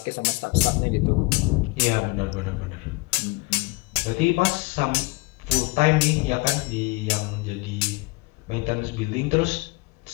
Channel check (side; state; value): right; quieter; 25.9 dB